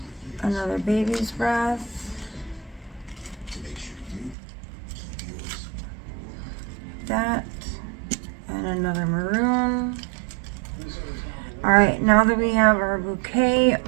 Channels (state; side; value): drops out; left; at 4.4 s